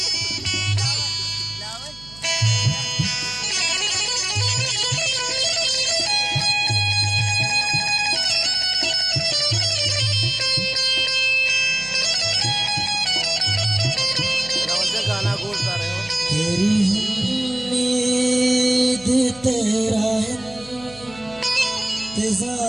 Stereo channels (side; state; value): right; noise; hum, 22 dB below the sound